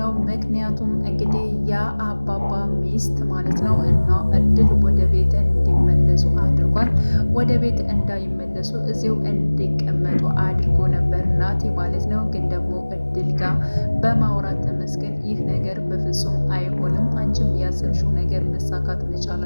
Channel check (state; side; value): inverted; both; correlation -1.00